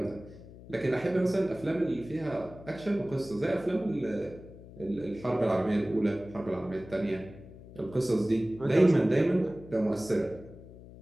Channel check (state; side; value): noise; left; hum, 17 dB below the sound